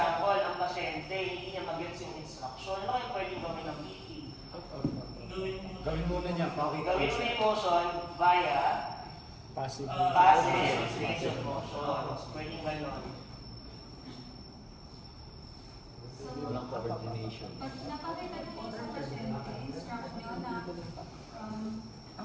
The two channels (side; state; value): both; identical; correlation 1.00